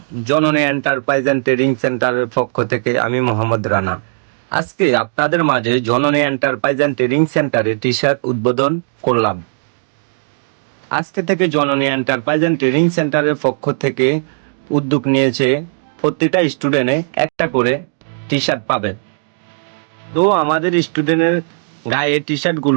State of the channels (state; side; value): silent; left; digital silence